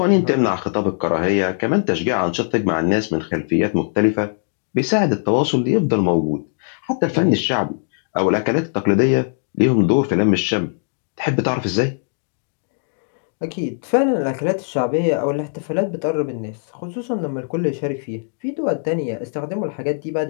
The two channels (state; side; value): silent; right; digital silence